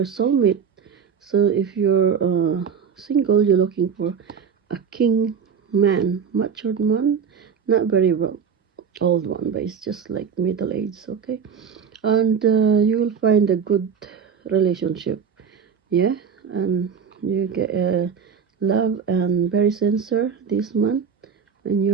soulmate. So if you're single, you're looking for a king man, matured man, not very well old one, but it's just like middle age, okay? And you will find a good relationship, yeah? And you get love and very sincere this month in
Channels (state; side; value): quieter; left; 6.8 dB